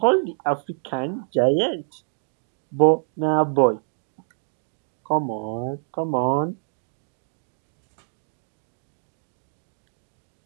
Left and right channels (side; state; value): left; silent; digital silence